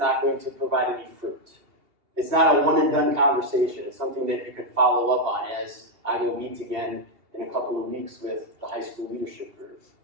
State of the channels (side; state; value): left; late; 2.8 ms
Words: going to provide any fruit. It's not a one and done conversation. It's something that you can follow up on, as I will meet again in a couple of weeks with the high school leadership group,